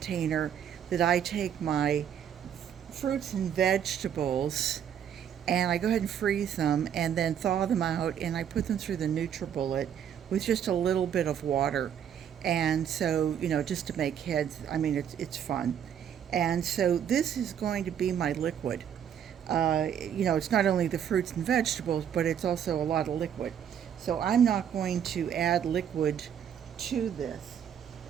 that I take my fruits and vegetables and I go ahead and freeze them and then thaw them out, and I put them through the NutriBullet with just a little bit of water. And so, just to make heads, it's fun. And so this is going to be my liquid. It's not only the fruits and vegetables, but it's also a lot of liquid. So I'm not going to add liquid to this.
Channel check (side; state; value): left; quieter; 9.0 dB